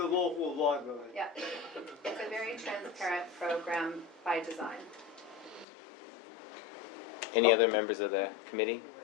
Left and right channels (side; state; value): right; drops out; at 5.7 s